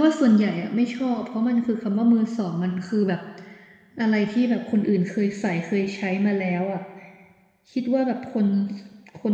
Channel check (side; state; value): both; identical; correlation 1.00